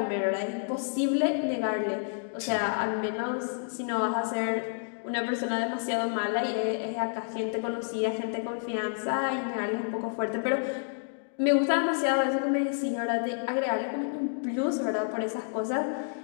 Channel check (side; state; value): right; silent; digital silence